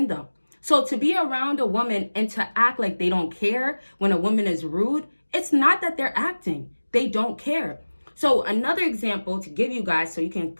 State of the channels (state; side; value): inverted; both; correlation -1.00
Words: them. So to be around a woman and to act like they don't care when a woman is rude, it's not that they're acting. They don't care. So another example to give you guys so you can